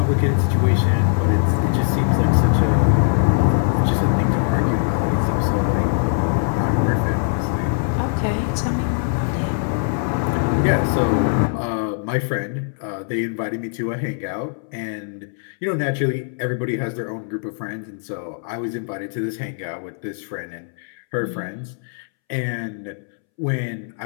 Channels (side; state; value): right; silent; 65 dB below the other